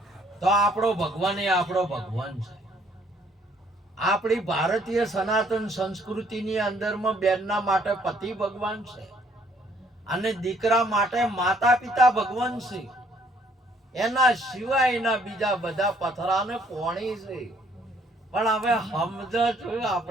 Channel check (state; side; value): normal; both; correlation 0.64